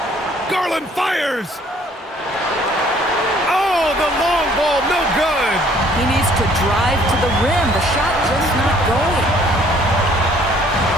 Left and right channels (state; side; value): normal; both; correlation 0.59